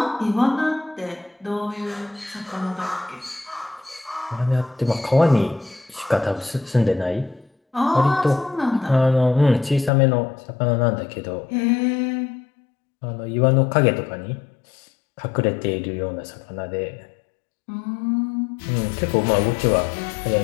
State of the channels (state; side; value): drops out; right; at 9.9 s